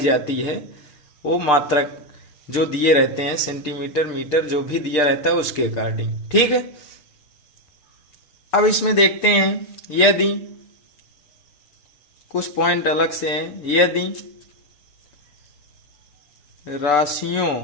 है। वो मात्रक जो दिए रहते हैं, सेंटीमीटर मीटर जो भी दिया रहता है उसके अकॉर्डिंग। ठीक है, अब इसमें देखते हैं, यदि कुछ पॉइंट अलग से हैं, यदि राशियों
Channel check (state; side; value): late; right; 6.8 ms